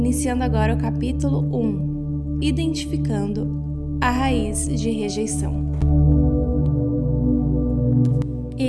agora o capítulo 1, Identificando a Raiz de Rejeição.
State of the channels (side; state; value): both; identical; correlation 1.00